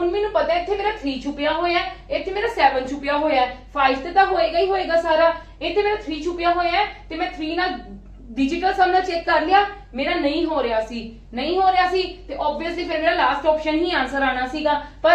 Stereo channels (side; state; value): both; identical; correlation 1.00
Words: ਮੈਨੂੰ ਪਤਾ ਇੱਥੇ ਮੇਰਾ 3 ਛੁਪਿਆ ਹੋਇਆ ਹੈ ਇੱਥੇ ਮੇਰਾ 7 ਛੁਪਿਆ ਹੋਇਆ ਹੈ 5 ਤੇ ਤਾਂ ਹੋਏਗਾ ਹੀ ਹੋਏਗਾ ਸਾਰਾ ਇੱਥੇ ਮੇਰਾ 3 ਛੁਪਿਆ ਹੋਇਆ ਹੈ ਤੇ ਮੈਂ 3 ਨਾਲ डिजिटल सम ਨਾਲ ਚੈੱਕ ਕਰ ਲਿਆ ਮੇਰਾ ਨਹੀਂ ਹੋ ਰਿਹਾ ਸੀ ਤੇ ਆਬਵੀਅਸਲੀ ਫਿਰ ਮੇਰਾ ਲਾਸਟ ਆਪਸ਼ਨ ਹੀ ਆਨਸਰ ਆਣਾ ਸੀਗਾ